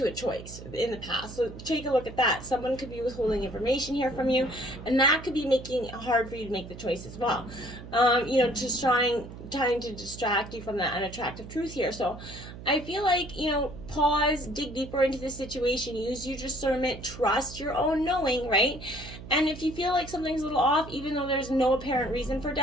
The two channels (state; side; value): noise; right; hum, 13 dB below the sound